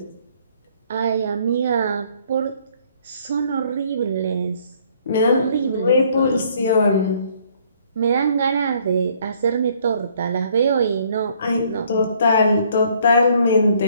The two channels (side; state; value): both; inverted; correlation -0.63